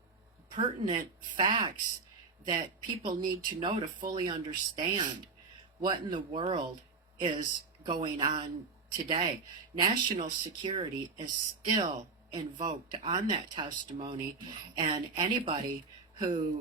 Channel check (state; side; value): quieter; left; 4.4 dB